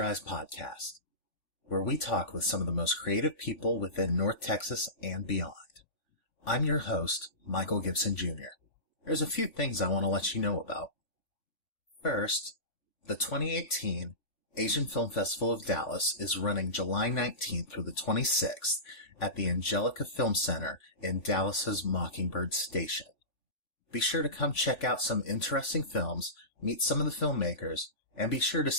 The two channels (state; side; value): late; right; 3.5 ms